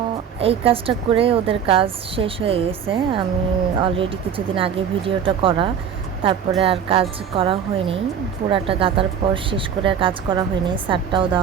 এই কাজটা করে ওদের কাজ শেষ হয়ে গেছে। আমি অলরেডি কিছুদিন আগে ভিডিওটা করা, তারপরে আর কাজ করা হয়নি। পুরাটা গাতার পর শেষ করে আর কাজ করা হয়নি, সারটাও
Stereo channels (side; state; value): left; quieter; 7.9 dB